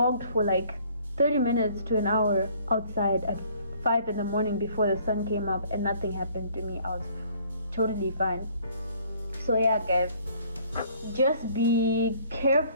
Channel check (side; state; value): both; inverted; correlation -0.58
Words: for like 30 minutes to an hour outside at 5 in the morning before the sun came up, and nothing happened to me. I was totally fine. So yeah, guys, just be